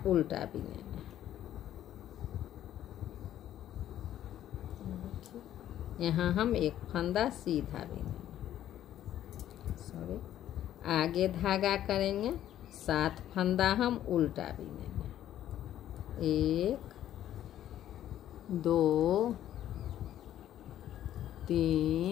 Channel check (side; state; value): right; quieter; 11.8 dB